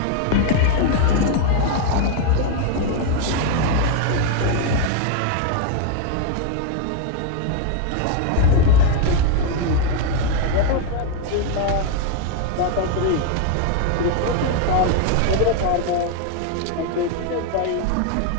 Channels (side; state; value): both; different; correlation 0.01